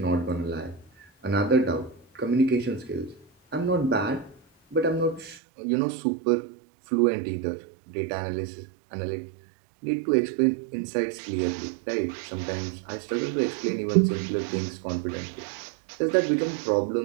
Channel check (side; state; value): left; drops out; at 5.4 s